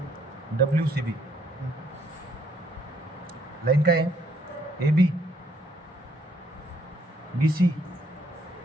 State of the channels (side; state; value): both; normal; correlation 0.68